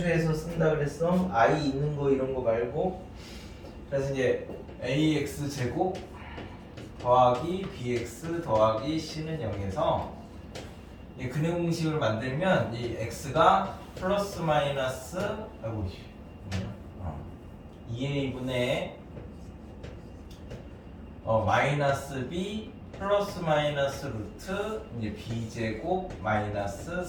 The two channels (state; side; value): identical; both; correlation 1.00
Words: 쓴다 그랬어. i 있는 거 이런 거 말고. 그래서 이제 ax 제곱 더하기 bx 더하기 c는 0에서 이 근해 공식을 만들면 이 x가 플러스 마이너스 2a분의 마이너스 b 플러스 마이너스 루트 이제 b제곱 마이너스